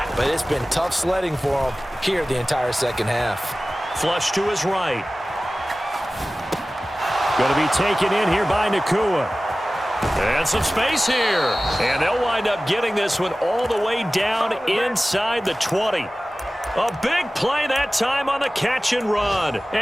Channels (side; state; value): both; normal; correlation 0.97